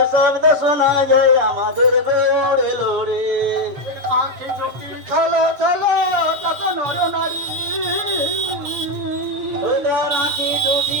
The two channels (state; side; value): late; left; 7.2 ms